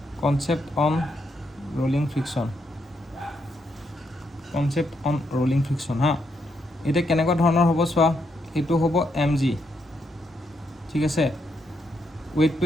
কনসেপ্ট অন ৰোলিং ফ্ৰিকশন হা এটা কেনেকুৱা ধৰণৰ হ'ব চোৱা এটো হ'ব mg ঠিক আছে weight to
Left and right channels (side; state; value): both; normal; correlation 0.78